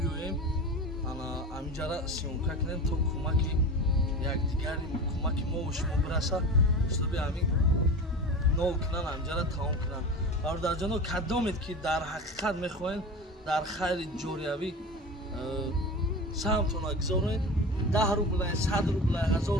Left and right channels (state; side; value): normal; both; correlation 0.30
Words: ҳаминҷара сиёмка кунем то кӯмаки якдигари кӯмаки мо ва шумо бираса ҳисоби ҳамин нол кунан ҳаминҷара тамом кунанд. Бародарҷоно, кадомед ки дар ҳақиқат мехоҳед дар хайри ҷориявӣ саҳмтона гузоред, 10 рублай, 100 рублай, 1000